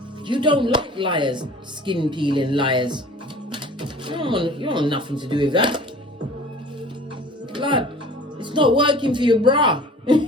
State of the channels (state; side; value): normal; both; correlation 0.45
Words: You don't like liars, skin peeling liars. You don't want nothing to do with that. Blood. It's not working for you, brah.